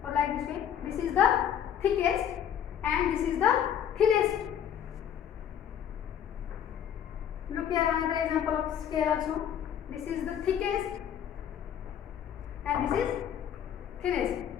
or like this way. This is the thickest and this is the thinnest. Look here, another example of scale also. This is the thickest and this is thinnest.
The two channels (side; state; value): right; quieter; 9.5 dB